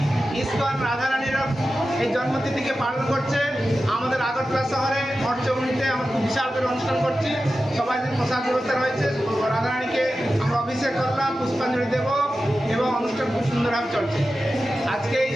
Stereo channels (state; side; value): normal; both; correlation 0.93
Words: ইসকন রাধারানীর এই জন্মতিথিকে পালন করছে। আমাদের আগরতলা শহরে মঠচৌমুনিতে আমরা খুব বিশাল করে অনুষ্ঠান করছি। সবাই প্রসাদ ব্যবস্থা রয়েছে। রাধারানীকে আমরা অভিষেক করলাম, পুষ্পাঞ্জলি দেব এবং অনুষ্ঠান খুব সুন্দরভাবে চলছে। আজকে এই